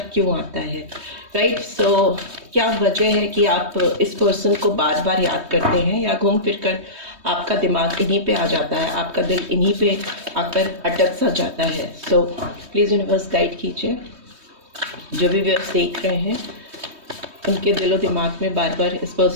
क्यों आता है। राइट, सो क्या वजह है कि आप इस पर्सन को बार बार याद करते हैं या घूम फिर कर आपका दिमाग इन्हीं पे आ जाता है, आपका दिल इन्हीं पे आकर अटक सा जाता है। सो प्लीज़ यूनिवर्स गाइड कीजिए, जो भी व्यूअर्स देख रहे हैं उनके दिलो दिमाग में बार बार इस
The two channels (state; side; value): late; left; 3.2 ms